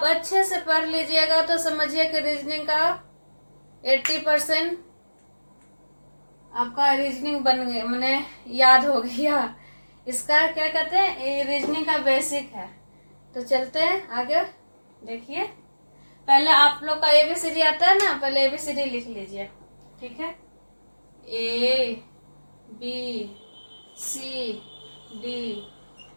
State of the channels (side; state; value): both; inverted; correlation -1.00